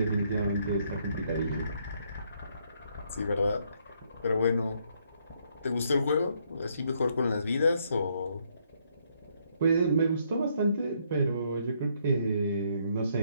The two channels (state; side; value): inverted; both; correlation -0.72